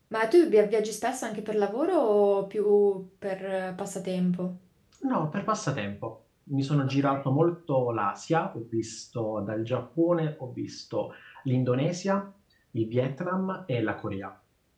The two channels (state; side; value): identical; both; correlation 1.00